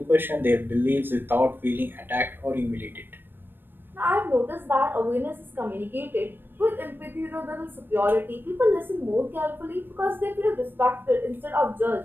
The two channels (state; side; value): late; left; 0.096 ms